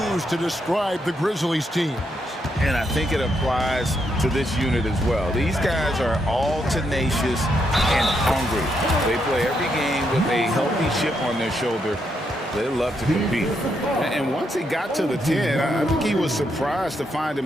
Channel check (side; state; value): both; normal; correlation 0.79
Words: to describe the Grizzlies team. And I think it applies to this unit as well. These guys are all tenacious and hungry. They play every game with a healthy chip on their shoulder. They love to compete. And once he got to the 10, I think he was surprised to find